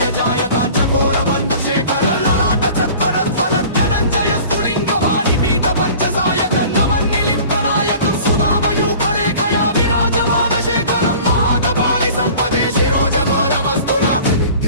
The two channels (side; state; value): both; inverted; correlation -0.44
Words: जायताञ्चकोर बन्धुशेखर ललाट चत्वरध्वलत्यनञ्जय स्फुलिङ्ग वाणिपीत पञ्चसायक नमन्निलिप्तनायकं सुधामयूखलेखया विराजमान शेखरं महाकपालि सम्पदे शिरोजबालमस्तु नः